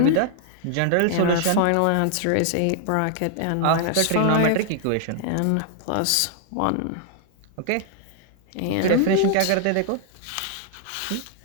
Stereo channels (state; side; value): different; both; correlation 0.00